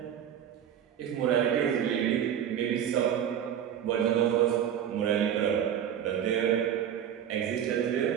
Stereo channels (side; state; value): left; quieter; 9.5 dB